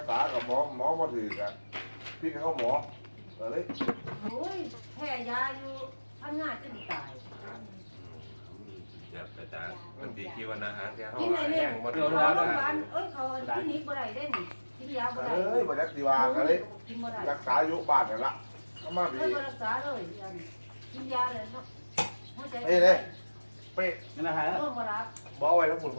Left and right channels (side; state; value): both; inverted; correlation -1.00